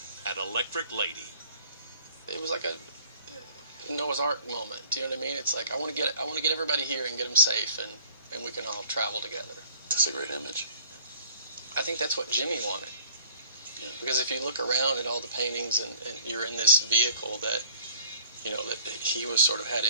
at Electric Lady. It was like a Noah's Ark moment. Do you know what I mean? It's like I want to get everybody here and get them safe, and we can all travel together. That's a great image. I think that's what Jimmy wanted. Yeah. Because if you look around at all the paintings and you're in this vehicle that that he was sort of had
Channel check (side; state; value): both; inverted; correlation -0.51